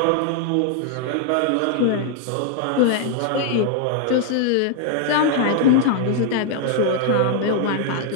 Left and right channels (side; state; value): both; different; correlation 0.00